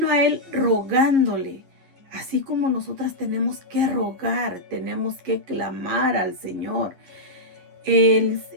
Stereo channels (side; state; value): left; late; 11 ms